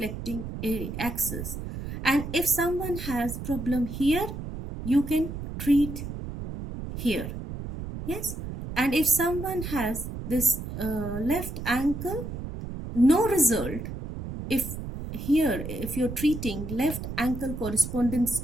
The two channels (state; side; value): noise; right; rumble, 7 dB below the sound